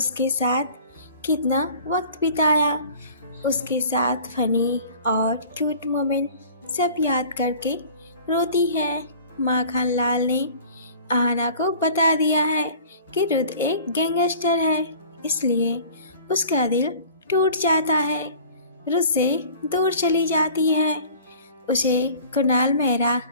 साथ कितना वक्त बिताया, उसके साथ फनी और क्यूट मोमेंट सब याद करके रोती है। माखन लाल ने आहना को बता दिया है कि रुद एक गैंगस्टर है, इसलिए उसका दिल टूट जाता है। रुद से दूर चली जाती है। उसे कुणाल मेहरा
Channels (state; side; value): inverted; both; correlation -0.46